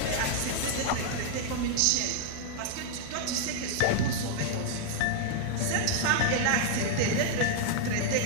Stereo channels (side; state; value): both; different; correlation 0.00